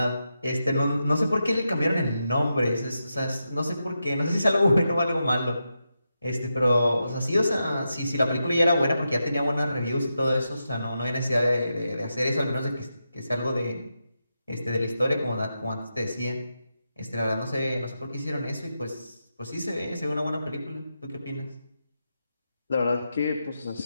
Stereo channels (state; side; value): inverted; both; correlation -0.87